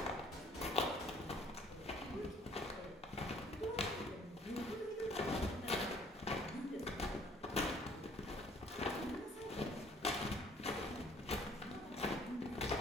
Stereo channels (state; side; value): normal; both; correlation 0.58